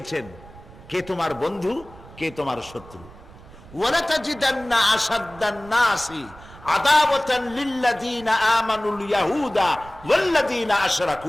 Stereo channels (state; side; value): noise; right; rumble, 20 dB below the sound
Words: কে তোমার বন্ধু, কে তোমার শত্রু। ওয়ালা তাজিদান্না আশাদ্দান নাসি আদাওয়াতান লিল্লাযিনা আমানুল ইয়াহুদা ওয়াল্লাযিনা